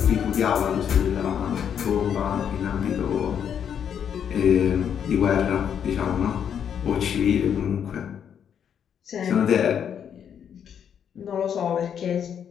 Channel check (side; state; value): right; quieter; 8.3 dB